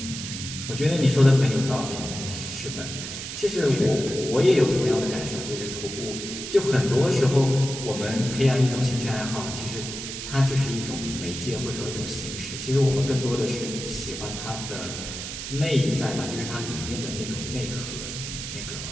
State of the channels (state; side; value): noise; right; hiss, 7 dB below the sound